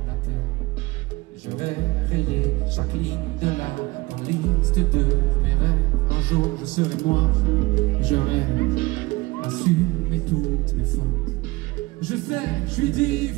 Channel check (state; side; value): quieter; left; 21.9 dB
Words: la terre. J'aurais rayé chaque ligne de la liste de mes rêves. Un jour je serai moi, j'aurais assumé toutes mes fautes. Je sais, je suis